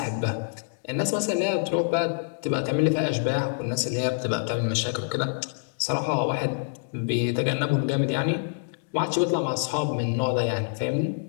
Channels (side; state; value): right; silent; digital silence